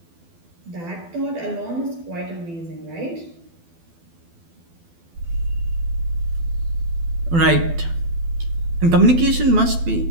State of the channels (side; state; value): left; late; 12 ms